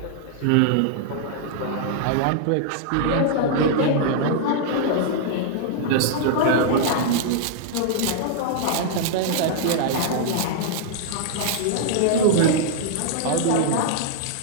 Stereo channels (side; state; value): both; different; correlation -0.01